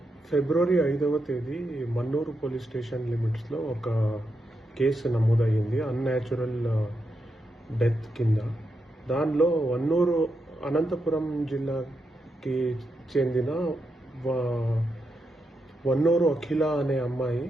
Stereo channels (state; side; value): normal; both; correlation 0.84